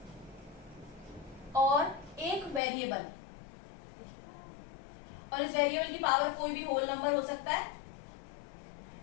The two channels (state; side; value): drops out; right; at 2.6 s